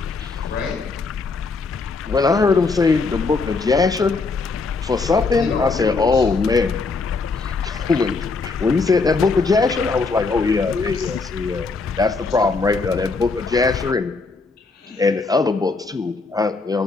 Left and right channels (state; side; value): quieter; right; 4.1 dB